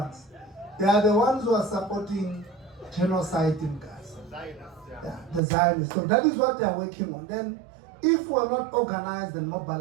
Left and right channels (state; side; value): drops out; left; at 5.4 s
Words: They are the ones who are supporting genocide in Gaza. Yeah, the Zionists. So that is what they are working on. Then, if we are not organized and